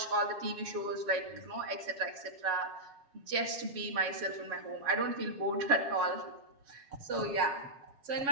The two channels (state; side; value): late; left; 7.3 ms